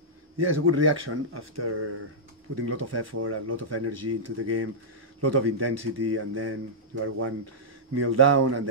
Yeah, it's a good reaction after putting a lot of effort and a lot of energy into the game, a lot of intensity, and then you are 1-0 down, and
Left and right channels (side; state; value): both; normal; correlation -0.12